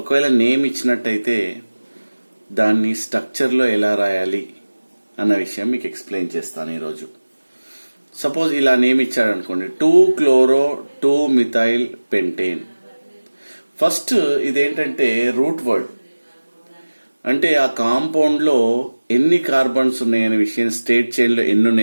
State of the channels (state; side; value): inverted; both; correlation -1.00